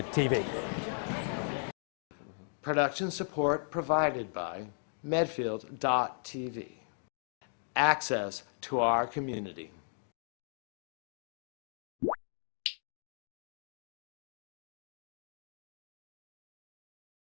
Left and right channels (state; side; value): silent; right; digital silence